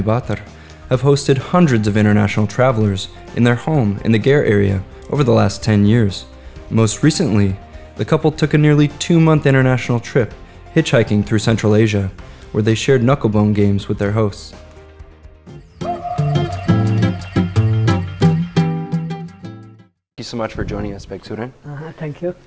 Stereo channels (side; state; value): both; identical; correlation 1.00